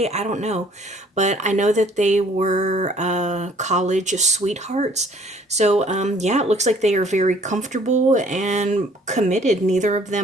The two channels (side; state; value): both; normal; correlation 0.58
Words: I don't know. But I know that they were college sweethearts. So, yeah, it looks like they are very comfortable and committed. Neither of